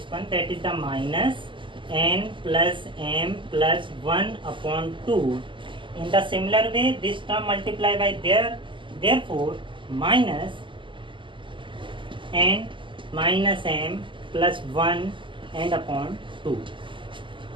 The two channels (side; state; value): left; late; 0.24 ms